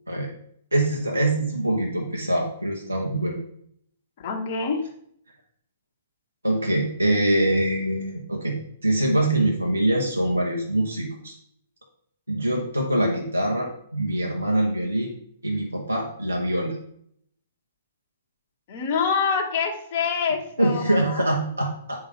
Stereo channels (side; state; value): both; inverted; correlation -0.76